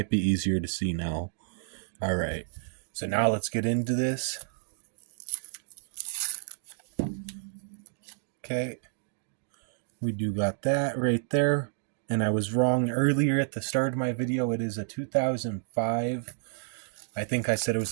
be easier to see now. Alright, so now let's get into this. Okay, we do got that right there. And I was wrong earlier at the start of my video. It is a 2005. I think I said it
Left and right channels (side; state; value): left; silent; digital silence